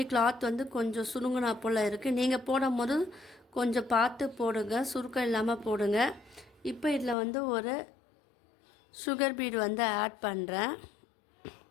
கிளாத் வந்து கொஞ்சம் சுருங்கினா போல் இருக்குது. நீங்கள் போடும் போது கொஞ்சம் பார்த்து போடுங்க, சுருக்கம் இல்லாமல் போடுங்க. இப்போ இதில் வந்து ஒரு சுகர் பீட் வந்து ஆட் பண்ணுறேன்.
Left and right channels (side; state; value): right; drops out; at 7.2 s